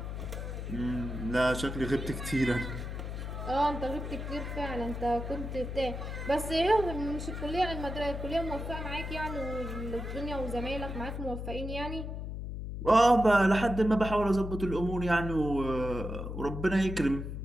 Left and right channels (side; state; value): left; noise; hum, 6 dB below the sound